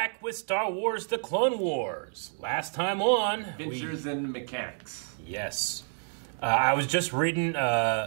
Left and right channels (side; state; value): left; silent; 58 dB below the other